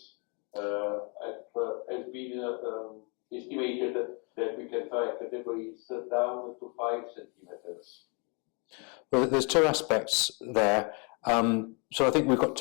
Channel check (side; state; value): right; quieter; 33.7 dB